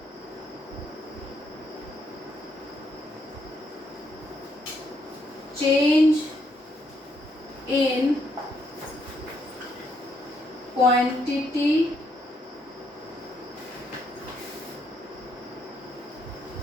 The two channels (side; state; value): both; normal; correlation 0.74